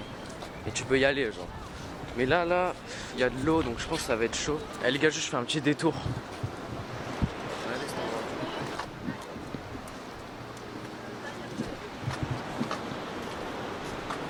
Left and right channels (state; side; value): identical; both; correlation 1.00